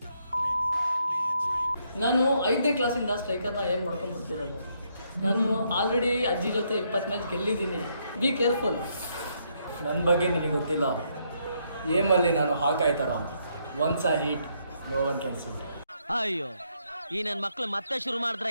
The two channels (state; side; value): inverted; both; correlation -0.74